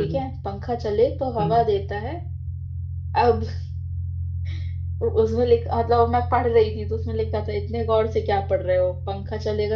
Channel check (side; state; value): both; identical; correlation 1.00